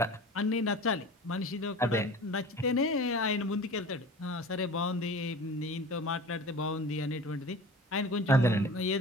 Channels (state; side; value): normal; both; correlation 0.38